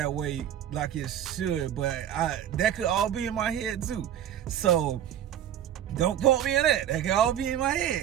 way like it should, but that could all be in my head too. So don't quote me on that. That could all be in my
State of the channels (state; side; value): quieter; left; 10.6 dB